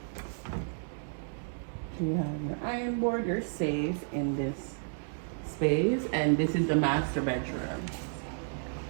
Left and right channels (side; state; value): left; silent; digital silence